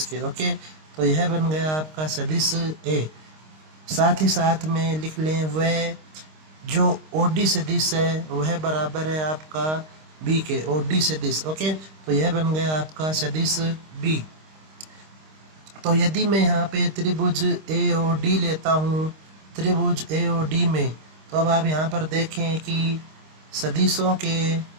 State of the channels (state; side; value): late; left; 26 ms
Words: के। ओके, तो यह बन गया आपका सदिश A। साथ ही साथ में लिख लें वह जो OD सदिश है वह बराबर है आपका B के, OD सदिश। ओके, तो यह बन गया आपका सदिश B। तो यदि मैं यहाँ पे त्रिभुज AOD लेता हूँ, त्रिभुज AOD में, तो अब आप यहाँ पर देखें कि सदिशों के